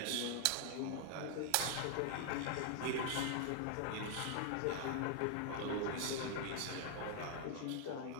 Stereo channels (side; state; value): both; different; correlation 0.00